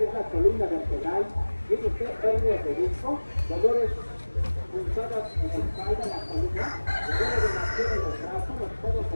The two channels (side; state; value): both; inverted; correlation -1.00